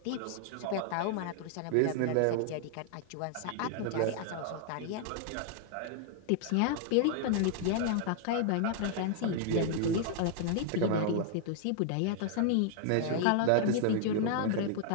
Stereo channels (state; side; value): different; both; correlation -0.01